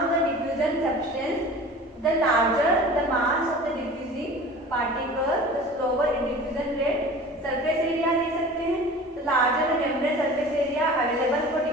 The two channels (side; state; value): both; normal; correlation 0.40